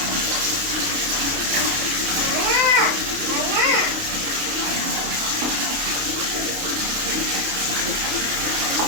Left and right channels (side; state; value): left; late; 29 ms